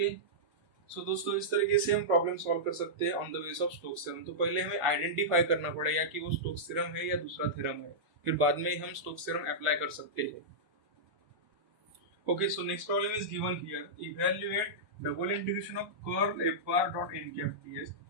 सो दोस्तों इस तरीके से हम प्रॉब्लम सॉल्व कर सकते हैं on the base of Stokes theorem. तो पहले हमें आइडेंटिफाई करना पड़ेगा कि वो स्टोक्स थ्योरम है या दूसरा थ्योरम है, फिर बाद में हम स्टोक्स थ्योरम अप्लाई कर सकते हैं। Okay, so next problem is given here, evaluate double integration of curl f bar dot n cap ds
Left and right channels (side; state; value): left; late; 1.1 ms